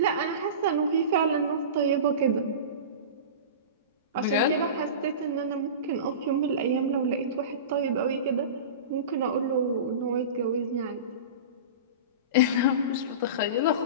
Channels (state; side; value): inverted; both; correlation -0.30